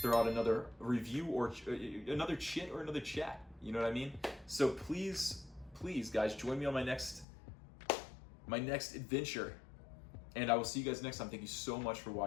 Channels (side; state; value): right; drops out; at 7.2 s